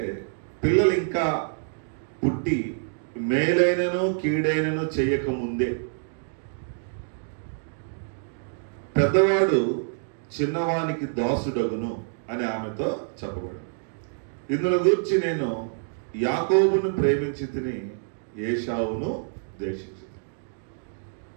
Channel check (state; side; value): silent; left; digital silence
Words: పిల్లలు ఇంకా పుట్టి మేలైనను కీడైనను చేయకముందే పెద్దవాడు చిన్నవానికి దాసుడగును అని ఆమెతో చెప్పబడింది. ఇందులో గురించి నేను యాకోబును ప్రేమించి తిని ఏశావును ద్వేషించి.